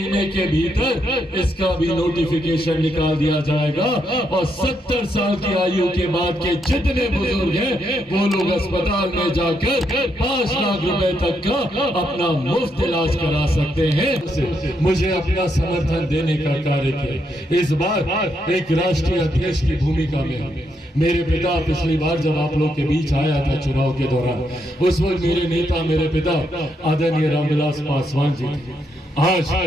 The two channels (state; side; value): normal; both; correlation 0.79